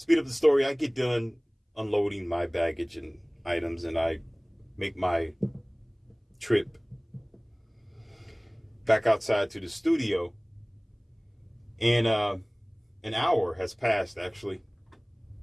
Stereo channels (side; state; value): both; identical; correlation 1.00